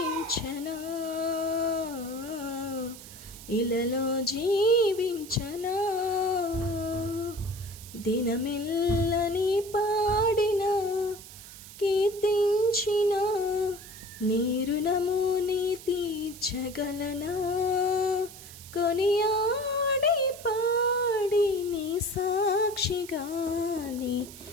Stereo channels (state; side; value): noise; right; hiss, 16 dB below the sound